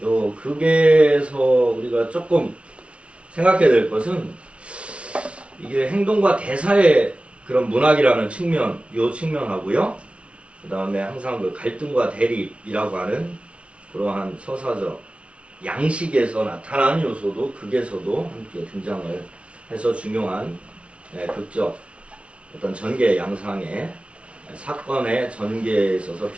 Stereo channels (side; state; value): left; late; 0.061 ms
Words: 요 극에서 우리가 조금 생각해야 될 것은 이게 행동과 대사의 그런 문학이라는 측면, 요 측면하고요. 그 다음에 항상 그 갈등과 대립이라고 하는 그러한 서사적 양식에서 나타나는 요소도 극에서도 함께 등장을 해서 중요한 극적 어떤 전개 양상의 사건의 전개에 있어서